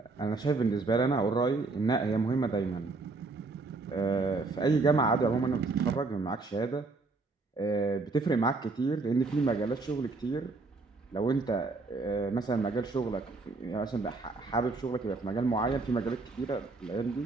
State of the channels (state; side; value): quieter; left; 3.7 dB